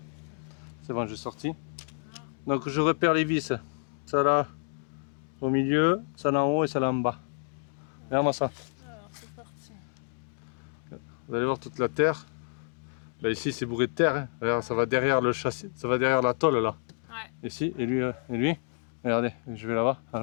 C'est bon, j'ai sorti. Voilà. Donc je repère les vis. Ça là, au milieu, ça là en haut et ça là en bas. Regarde-moi ça. Alors, c'est parti. Vous allez voir toute la terre. Là ici c'est bourré de terre. Hein. Regarde, ça va derrière le châssis, ça va derrière la tôle là. Ouais. Ici et lui. Regardez, je vais là-bas, à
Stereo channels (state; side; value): silent; right; 58 dB below the other